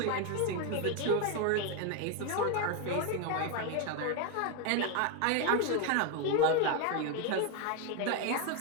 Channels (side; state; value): both; different; correlation 0.01